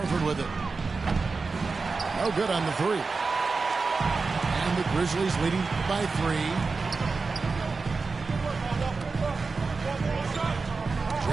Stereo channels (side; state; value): left; quieter; 4.3 dB